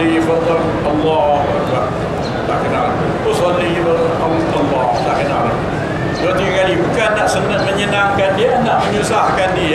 fardhu Allah Akbar, tak kenal. Usalli Allah, tak kenal. 2-3 kali, bukan nak menyenangkan dia, nak menyusahkan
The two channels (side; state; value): both; identical; correlation 1.00